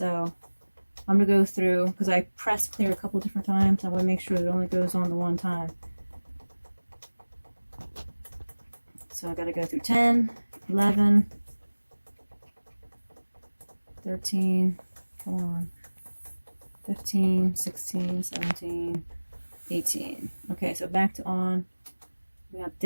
I'm going to go through, because I pressed clear a couple different times. I want to make sure it only goes on the one time. So I got to go through 10, 11, 13, come on, 15, 16, 17, 18. Okay, so back to on. We got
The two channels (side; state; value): both; inverted; correlation -1.00